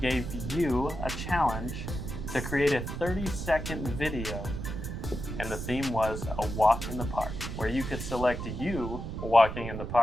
you a challenge to create a 30-second video, and the theme was a walk in the park, where you could select you walking in the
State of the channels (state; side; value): noise; right; rumble, 6 dB below the sound